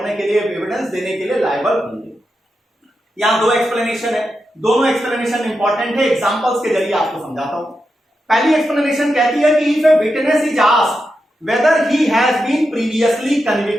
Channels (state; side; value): normal; both; correlation 0.87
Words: के लिए एविडेंस देने के लिए लायबल होंगे। यहां दो एक्सप्लेनेशन है, दोनों एक्सप्लेनेशन इंपॉर्टेंट है, एग्जांपल्स के जरिए आपको समझाता हूं। पहली एक्सप्लेनेशन कहती है कि if a witness is asked whether he has been previously